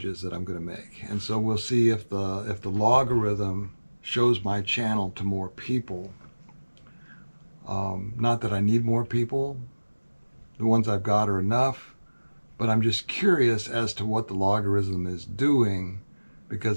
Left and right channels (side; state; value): both; inverted; correlation -1.00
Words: that I'm going to make, and so we'll see if the logarithm shows my channel to more people. Not that I need more people; the ones I've got are enough. But I'm just curious as to what the logarithm is doing,